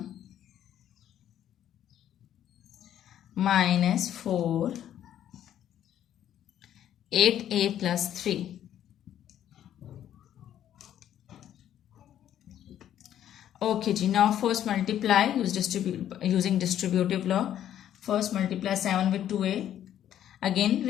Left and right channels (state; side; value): quieter; right; 10.9 dB